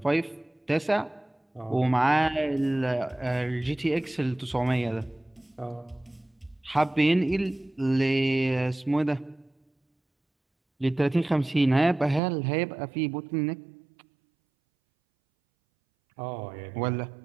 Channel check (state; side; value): drops out; left; at 12.2 s